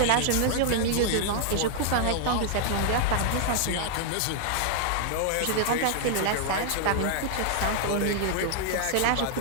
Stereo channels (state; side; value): different; both; correlation -0.01